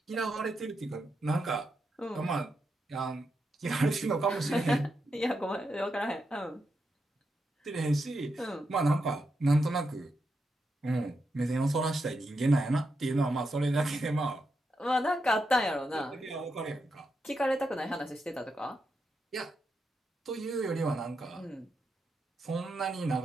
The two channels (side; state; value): both; normal; correlation 0.85